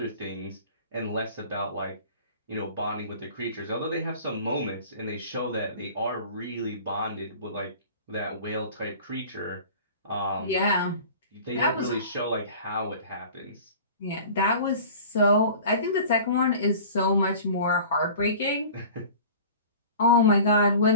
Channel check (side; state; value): both; inverted; correlation -0.41